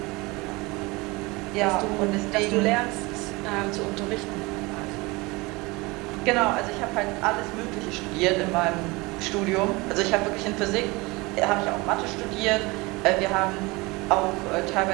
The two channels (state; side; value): quieter; left; 24.0 dB